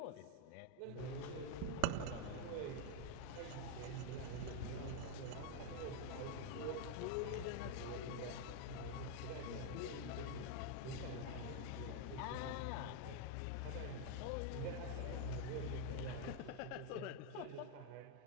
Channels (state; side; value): different; both; correlation 0.01